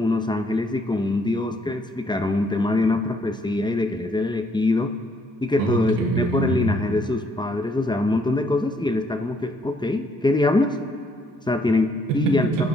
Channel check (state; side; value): normal; both; correlation 0.69